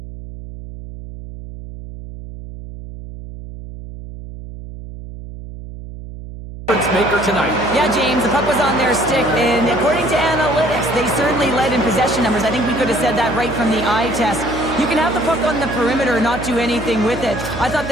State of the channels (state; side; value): noise; right; hum, 13 dB below the sound